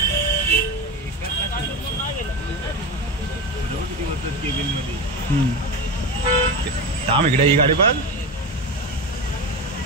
थांब इकडे ही गाडी बघ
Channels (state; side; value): normal; both; correlation 0.21